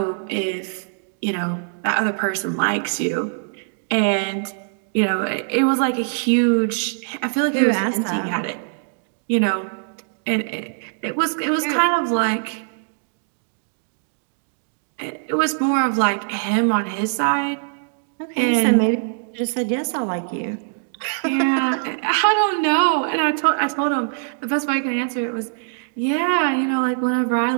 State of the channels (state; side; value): silent; left; digital silence